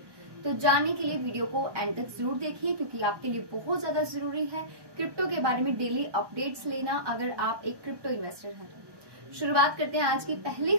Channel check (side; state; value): left; late; 1.1 ms